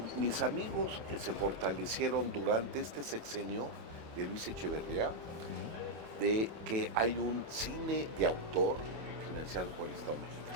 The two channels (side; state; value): left; late; 25 ms